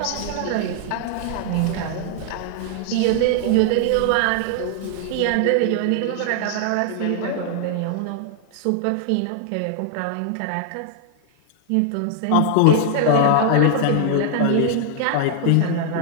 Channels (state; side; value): different; both; correlation -0.01